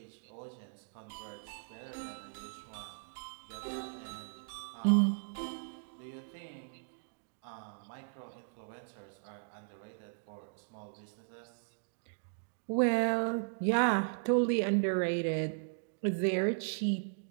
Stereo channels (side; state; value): left; silent; digital silence